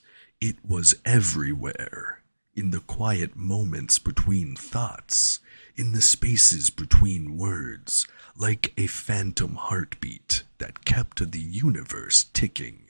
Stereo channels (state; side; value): inverted; both; correlation -1.00